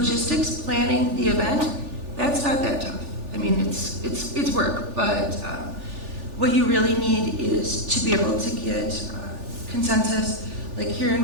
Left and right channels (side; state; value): left; late; 3.4 ms